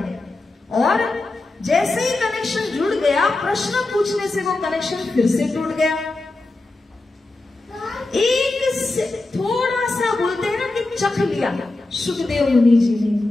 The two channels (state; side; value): quieter; right; 3.0 dB